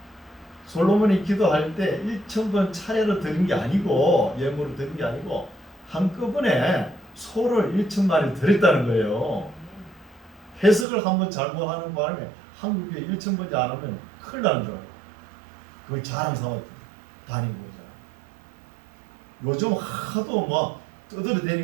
솔로몬이 기도할 때 1,000번 차례로 드린 게 아니고 예물을 드린 게 아니고 한꺼번에 소를 1,000마리 드렸다는 거예요. 해석을 한번 잘못하는 바람에 한국에 1,000번째 안 하면 큰일 나는 줄 알아요. 그걸 자랑 삼아 다니고 있잖아. 요즘 하도 막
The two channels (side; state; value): left; drops out; at 10.9 s